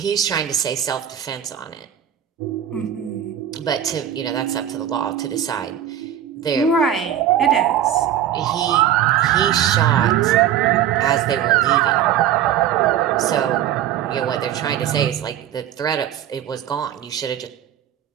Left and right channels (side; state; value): left; quieter; 10.5 dB